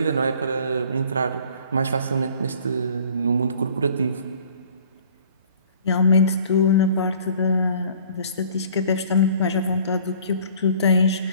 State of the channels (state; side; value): inverted; both; correlation -0.52